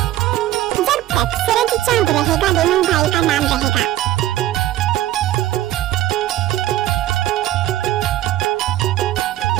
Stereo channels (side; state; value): left; quieter; 13.9 dB